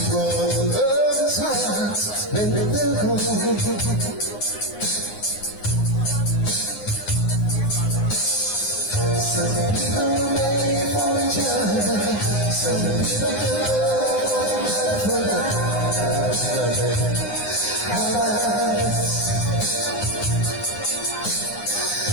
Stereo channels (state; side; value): late; right; 9.7 ms